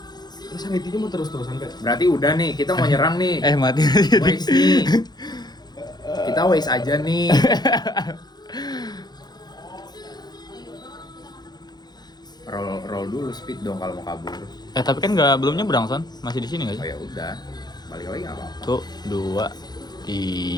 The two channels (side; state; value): right; late; 0.20 ms